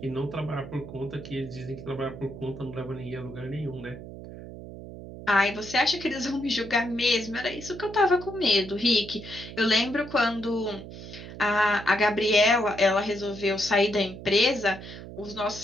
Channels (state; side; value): noise; right; hum, 13 dB below the sound